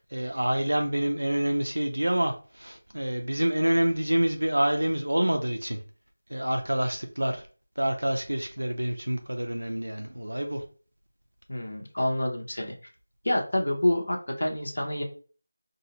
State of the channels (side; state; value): both; inverted; correlation -0.99